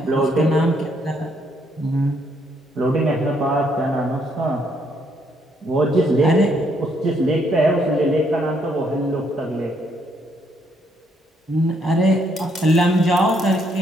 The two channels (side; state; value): both; normal; correlation 0.71